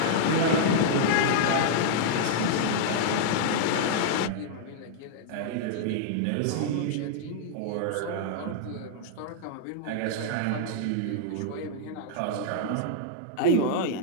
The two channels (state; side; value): different; both; correlation -0.01